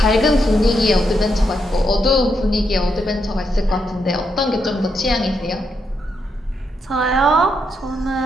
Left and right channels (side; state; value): both; normal; correlation 0.80